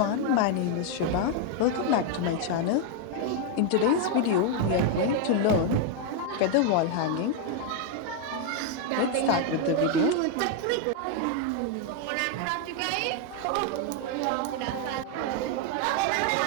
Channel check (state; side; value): different; both; correlation 0.01